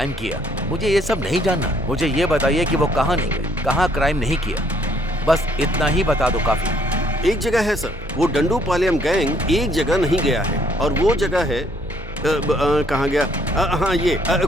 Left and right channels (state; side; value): normal; both; correlation 0.66